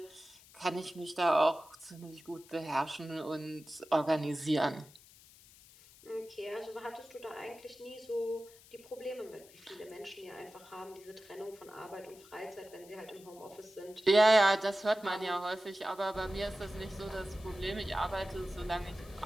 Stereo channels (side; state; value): left; noise; hiss, 23 dB below the sound